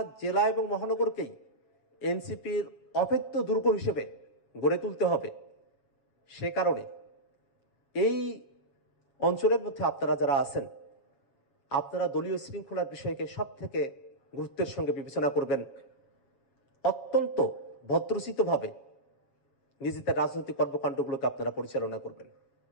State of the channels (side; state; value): right; late; 7.7 ms